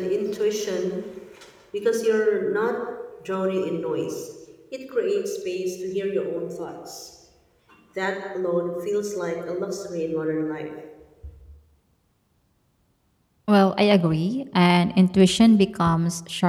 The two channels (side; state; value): both; identical; correlation 1.00